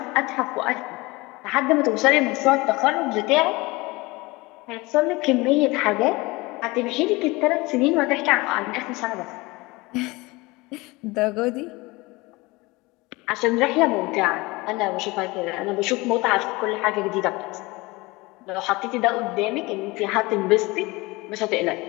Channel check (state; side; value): quieter; right; 23.0 dB